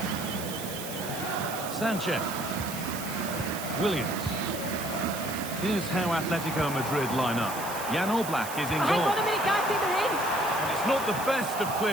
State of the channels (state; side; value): noise; right; hiss, 9 dB below the sound